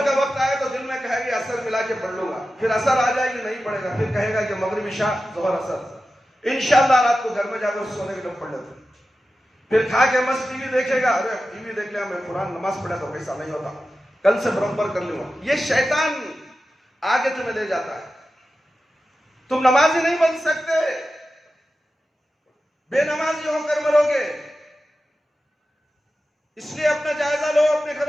کا وقت آئے تو دل میں کہے گی اثر ملا کے پڑھ لوں گا، پھر اثر آ جائے گی نہیں پڑھے گا، پھر کہے گا کہ مغرب عشاء ظہر اثر، انشاءاللہ رات کو گھر میں جا کر سونے کے لیے پڑھ لیتے۔ پھر کھا کے مست ٹی وی دیکھے گا، ارے ٹی وی دیکھ لیا، میں قرآن نماز پڑھا تو ایسا نہیں ہوتا، کل سے برابر کر لوں گا۔ یہ شیطان آگے تمہیں لے جاتا ہے۔ تم نمازی نہیں بن سکتے، بے نمازی ہو کر مرو گے۔ اس لیے اپنا جائزہ لو، اپنے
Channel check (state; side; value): normal; both; correlation 0.93